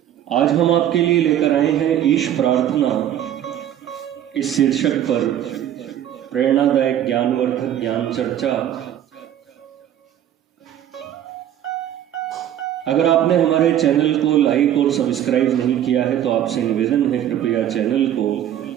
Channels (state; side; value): quieter; left; 11.0 dB